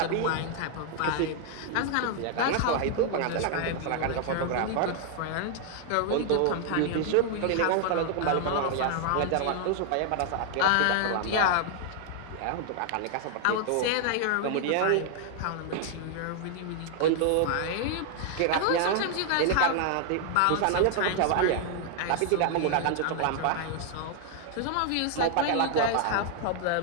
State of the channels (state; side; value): different; both; correlation 0.00